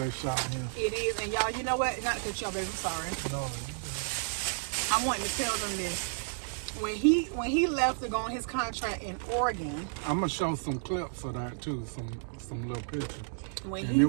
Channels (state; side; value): silent; left; digital silence